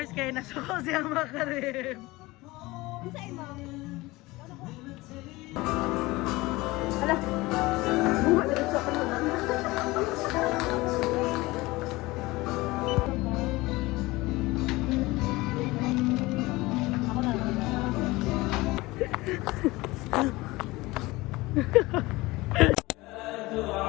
kay nasuko siya makarim. Kinsay mo?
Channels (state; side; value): quieter; right; 20.9 dB